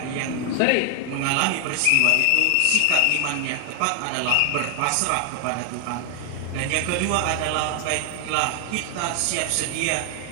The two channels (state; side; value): different; both; correlation 0.00